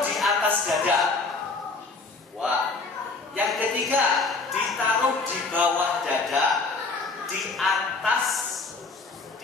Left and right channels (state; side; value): quieter; right; 3.9 dB